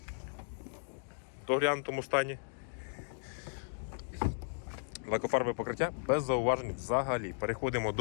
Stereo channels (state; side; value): silent; right; digital silence